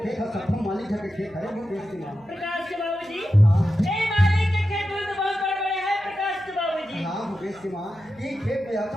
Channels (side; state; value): right; noise; hum, 28 dB below the sound